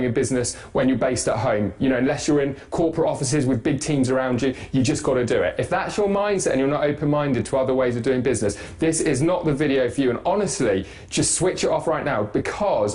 a business when you're based at home. Unless you're in corporate offices with big teams around you, you just got to do it. If that's your mindset and you're not open-minded to other ways of doing business, this is not the video for you. And honestly, just switch it off right now,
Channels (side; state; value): both; identical; correlation 1.00